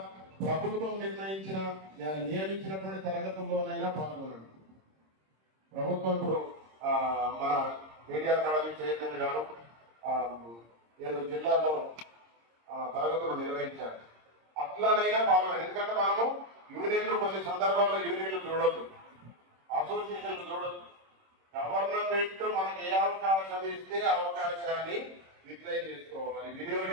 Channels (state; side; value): late; left; 26 ms